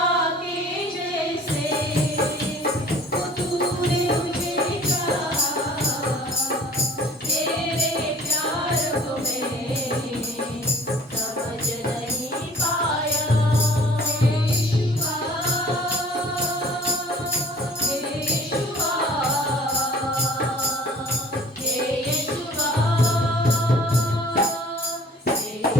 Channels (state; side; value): normal; both; correlation 0.49